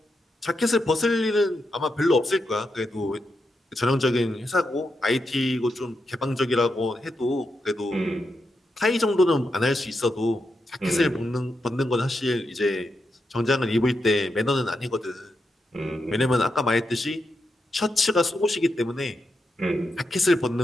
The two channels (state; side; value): normal; both; correlation 0.85